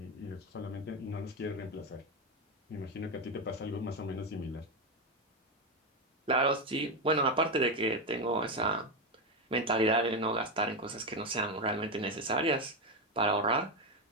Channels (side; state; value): both; normal; correlation 0.10